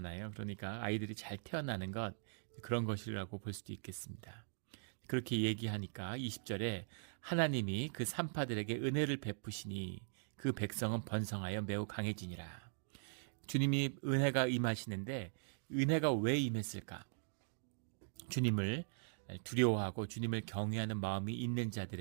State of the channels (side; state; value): left; silent; digital silence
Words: 그러니까 아이들이 잘 태어나는 것, 그런 것이라고 볼 수도 있겠습니다. 그렇게 얘기하니까 20절에 하나님이 그 산파들에게 은혜를 베푸시니 그 백성은 번성하여 매우 강해지니라. 주님이 은혜가 임하시는데 은혜가 왜 임했을까? 주님을 두려워하고 주님을 경외하는 마음이 있는